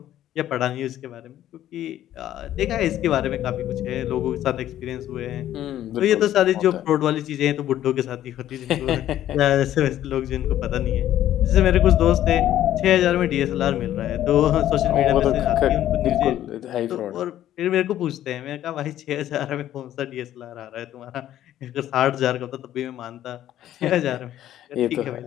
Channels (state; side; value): quieter; right; 12.3 dB